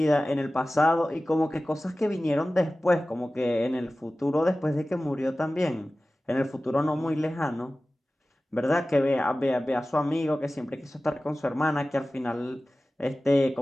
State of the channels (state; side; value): normal; both; correlation 0.96